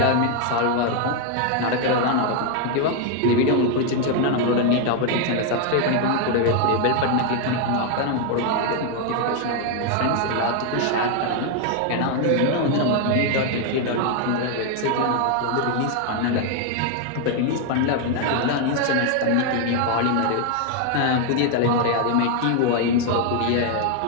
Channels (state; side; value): different; both; correlation 0.01